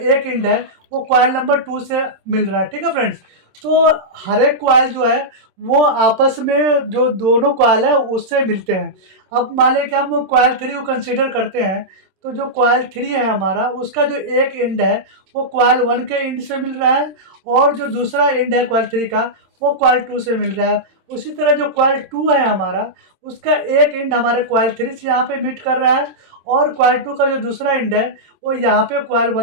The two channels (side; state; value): left; late; 27 ms